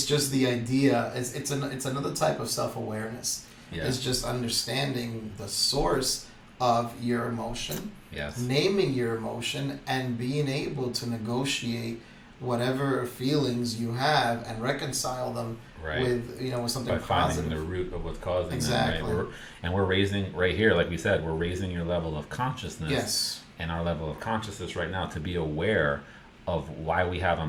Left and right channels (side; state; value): both; identical; correlation 1.00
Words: just the idea. It's another type of self awareness. Yeah. It's just understanding the source of your emotion, Yes. naming your emotion, and being able to negotiate whatever feelings you have and reconcile them Right. with something By finding positive. the root of what's causing Exactly. them. Right. We're raising right here, like we said, we're raising your level of consciousness. Yes. And our level of consciousness right now to be aware of why we have